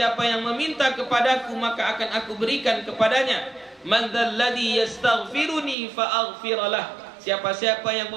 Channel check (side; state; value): left; drops out; at 5.8 s